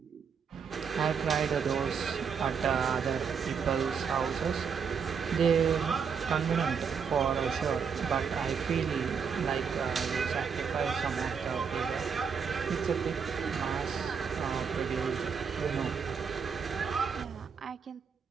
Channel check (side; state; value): left; quieter; 6.4 dB